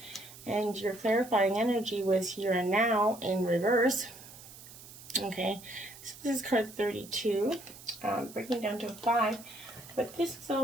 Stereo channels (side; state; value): right; noise; hiss, 17 dB below the sound